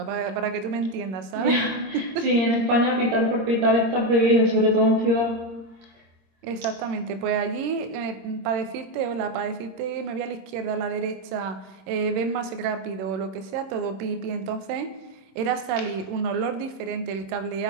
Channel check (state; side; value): late; left; 26 ms